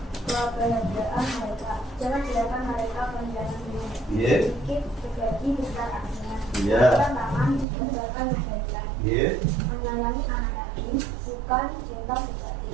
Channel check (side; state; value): left; drops out; at 7.7 s